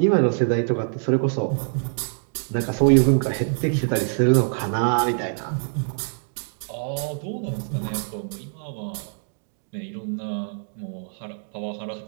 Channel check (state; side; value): silent; left; 62 dB below the other